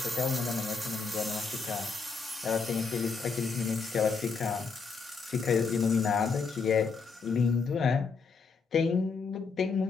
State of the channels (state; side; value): quieter; right; 5.0 dB